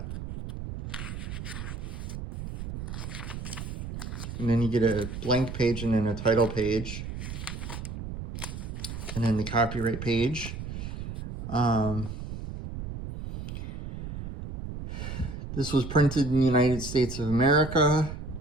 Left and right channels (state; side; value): noise; right; rumble, 7 dB below the sound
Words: And then you get a blank page and then a title page. And then the copyright page. This was printed in the United States of America.